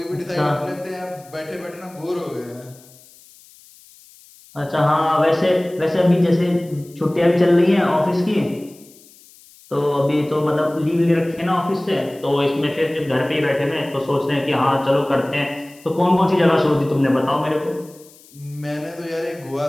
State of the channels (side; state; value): left; noise; hiss, 25 dB below the sound